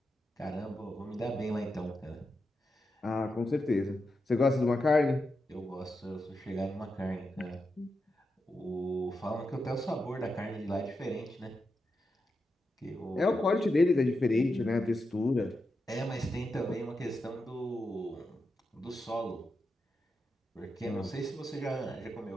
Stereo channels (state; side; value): normal; both; correlation 0.87